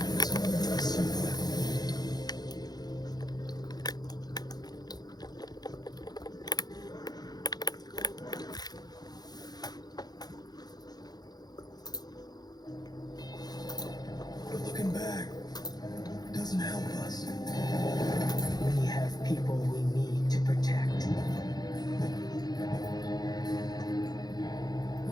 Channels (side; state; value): right; late; 0.19 ms